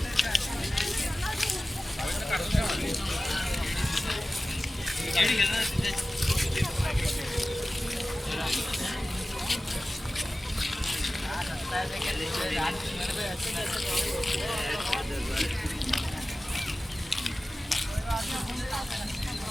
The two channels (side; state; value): both; normal; correlation 0.96